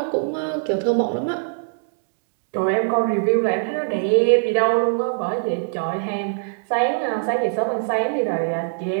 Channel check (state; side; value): silent; left; digital silence